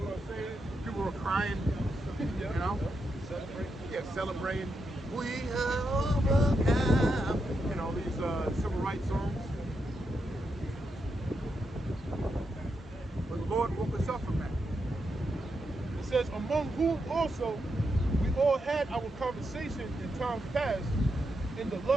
are saying, people are crying, celebrating. We have overcome. These civil rights songs. But the Lord woke us up from that. It says, among whom also we all had our conversation in times past, in the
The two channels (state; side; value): normal; both; correlation 0.84